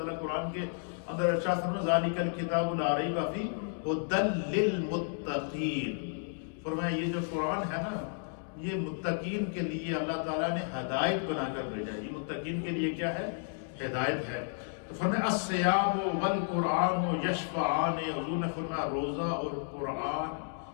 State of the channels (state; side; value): silent; right; digital silence